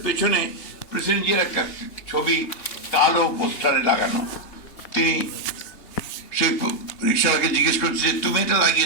পেছনে প্রেসিডেন্ট জিয়ার একটা ছবি কালো পোস্টারে লাগানো। তিনি সেই রিক্সাওয়ালাকে জিজ্ঞেস করছে যে তুমি এটা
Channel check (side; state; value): right; late; 3.6 ms